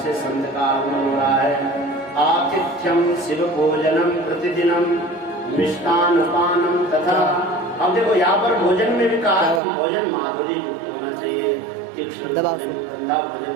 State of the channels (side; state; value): left; drops out; at 9.6 s